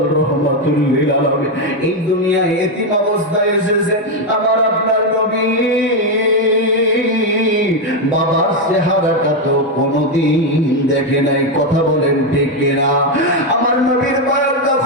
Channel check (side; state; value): both; normal; correlation 0.05